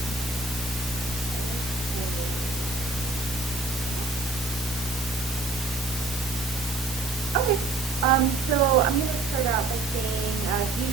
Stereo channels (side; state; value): left; quieter; 3.2 dB